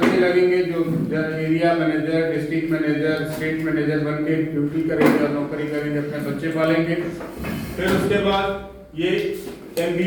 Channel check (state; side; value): identical; both; correlation 1.00